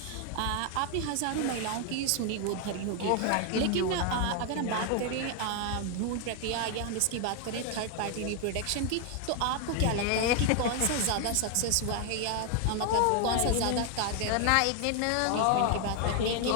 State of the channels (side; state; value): both; different; correlation 0.00